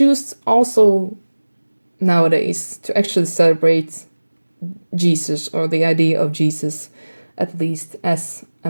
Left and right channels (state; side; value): inverted; both; correlation -1.00